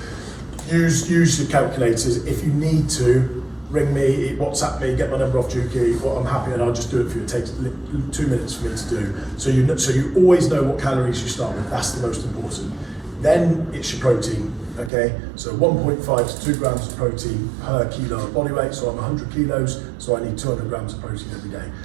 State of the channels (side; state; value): left; drops out; at 14.9 s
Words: use your calculators. If you need to, ring me, WhatsApp me, get my number off Juki. Well, I'm happy and I'll just do it for you. It takes 2 minutes for me to do. So you always know what calories you start with. That's the most important. Then it's your protein, okay? So 1.5 to 2 grams of protein per kilo of body weight. So I'm 100 kilos, so I need 200 grams of protein every day.